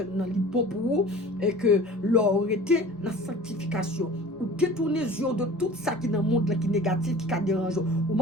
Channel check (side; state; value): both; normal; correlation 0.42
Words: l'hypo pour vous, et que l'on était dans la sanctification. Ou détourner les yeux de tout ça qui est dans le monde qui est négatif, qui est dérangeant. Ou